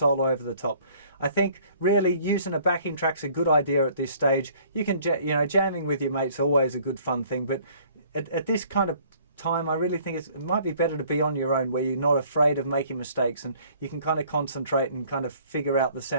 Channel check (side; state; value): both; inverted; correlation -0.57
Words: over the top. I think really using a backing track's a good idea at this stage. You can, jamming with your mates always a good fun thing, but at this kind of time, I really think it might be better to be on your own, where you're not afraid of making mistakes and you can kind of concentrate and kind of figure out the